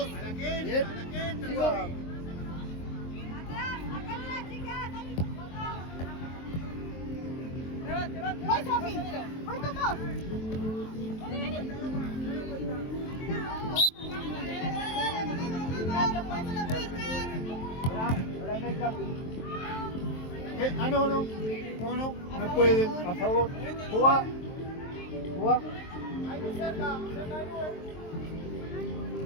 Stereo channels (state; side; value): late; right; 23 ms